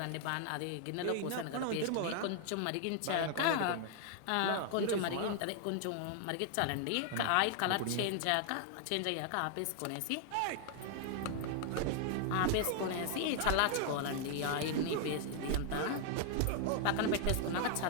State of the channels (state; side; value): different; both; correlation 0.00